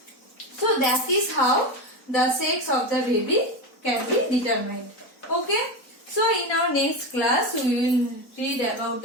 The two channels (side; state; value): right; late; 4.1 ms